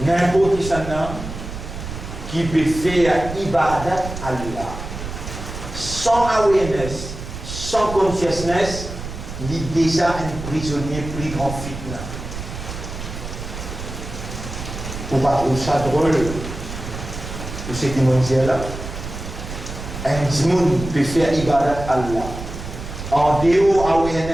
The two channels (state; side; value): noise; right; rumble, 9 dB below the sound